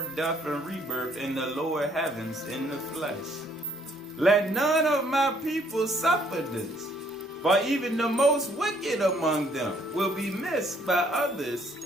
death, and rebirth in the lower heavens in the flesh. Let none of my people suffer this, for even the most wicked among them will be missed by others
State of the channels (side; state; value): both; normal; correlation 0.65